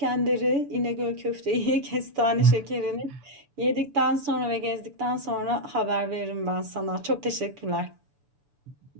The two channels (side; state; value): left; late; 6.9 ms